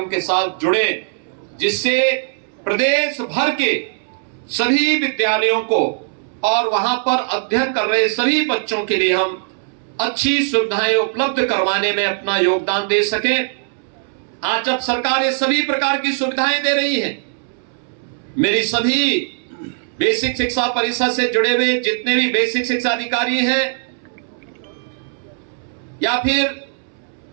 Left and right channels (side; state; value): left; silent; 66 dB below the other